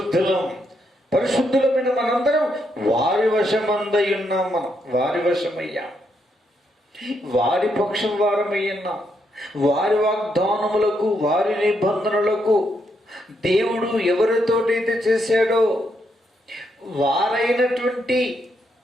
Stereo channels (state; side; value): normal; both; correlation 0.78